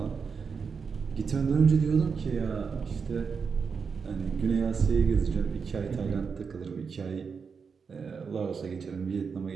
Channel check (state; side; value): quieter; left; 5.7 dB